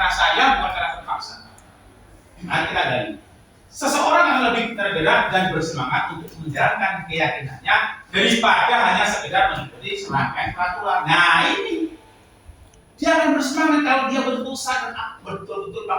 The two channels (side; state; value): both; identical; correlation 1.00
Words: saya, bukan karena terpaksa. Nanti kita gali. Seseorang yang lebih tergerak dan bersemangat untuk menjalankan keyakinannya daripada hanya sekedar mengikuti serangkaian peraturan. Nah ini dia akan bersemangat kalau dia betul-betul sadar, betul-betul